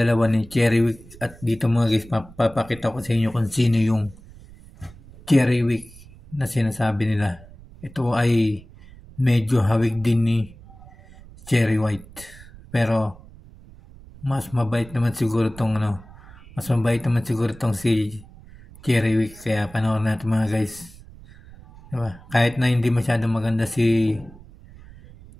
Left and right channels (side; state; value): right; noise; rumble, 20 dB below the sound